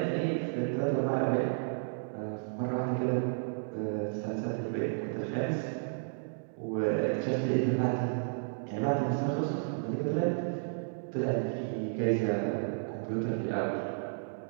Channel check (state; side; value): silent; left; digital silence